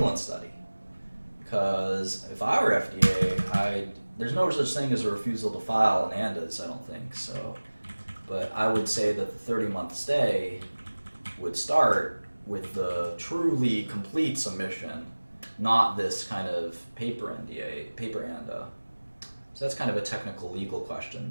study. Because if I were FDA, there's no such thing as a refusal to file an ANDAs, I don't think so. But I would say that the 30-month stay would start with the truly complete submission, not this kind of paper ANDA. So that's kind of a technical legal question.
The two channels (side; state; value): both; inverted; correlation -1.00